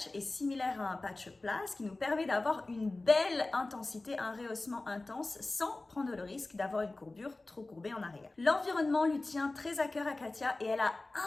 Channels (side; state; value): right; quieter; 3.1 dB